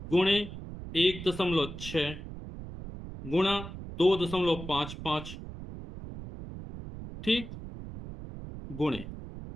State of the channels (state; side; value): noise; right; rumble, 11 dB below the sound